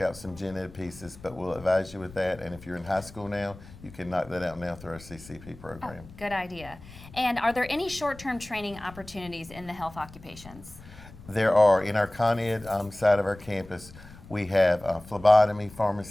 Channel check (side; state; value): left; noise; rumble, 19 dB below the sound